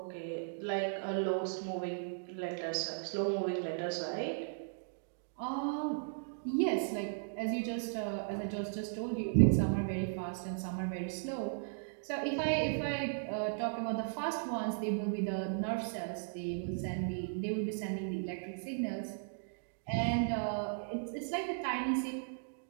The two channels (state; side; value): silent; left; digital silence